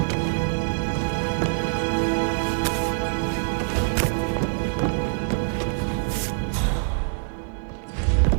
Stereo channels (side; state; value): left; silent; digital silence